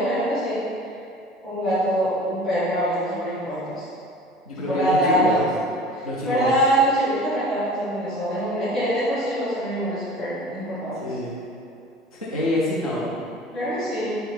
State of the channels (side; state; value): both; normal; correlation 0.42